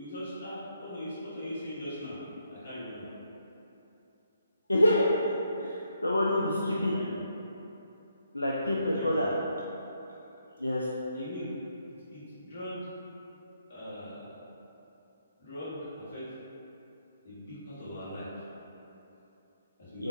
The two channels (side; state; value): both; inverted; correlation -0.78